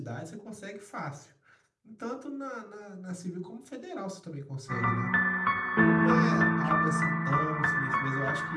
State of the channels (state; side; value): identical; both; correlation 1.00